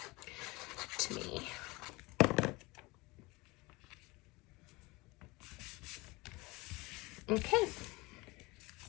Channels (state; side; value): quieter; right; 23.6 dB